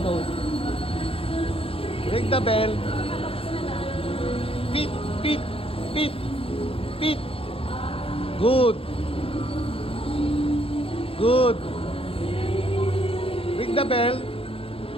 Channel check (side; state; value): right; late; 0.27 ms